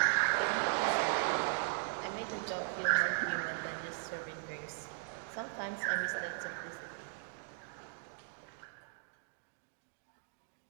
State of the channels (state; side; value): silent; left; digital silence